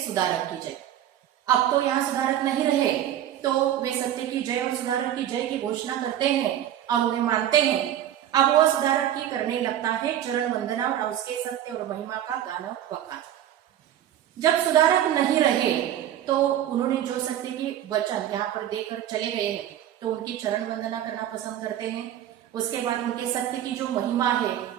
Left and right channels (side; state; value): left; quieter; 11.4 dB